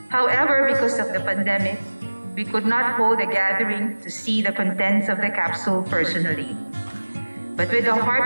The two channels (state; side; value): inverted; both; correlation -1.00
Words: However, because of the pandemic, we could not hold a gathering to see the contents of the capsule personally. But with the